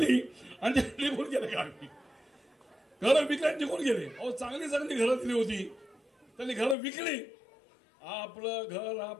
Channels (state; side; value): drops out; right; at 6.8 s